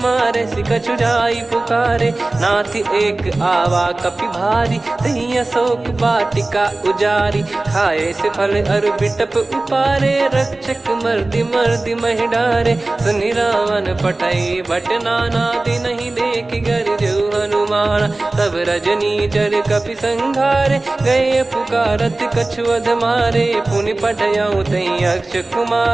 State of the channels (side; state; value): left; quieter; 3.0 dB